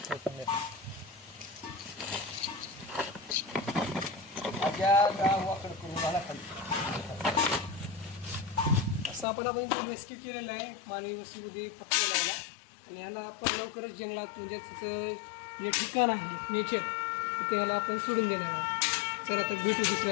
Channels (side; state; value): right; drops out; at 9.2 s